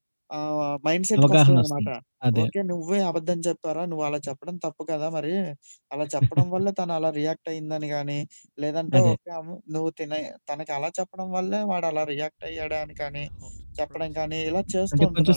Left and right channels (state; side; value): inverted; both; correlation -1.00